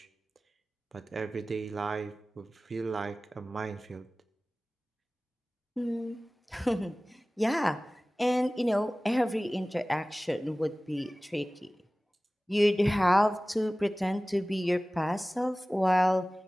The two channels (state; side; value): normal; both; correlation 0.98